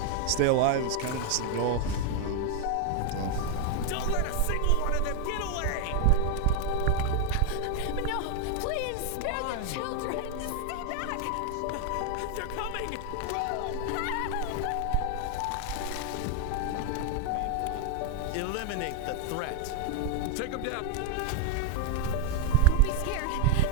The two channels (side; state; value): both; different; correlation 0.01